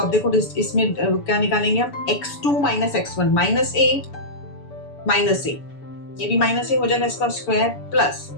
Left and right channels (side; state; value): right; late; 7.0 ms